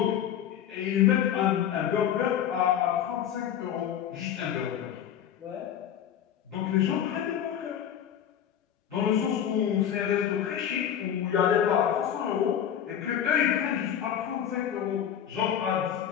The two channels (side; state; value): right; quieter; 9.6 dB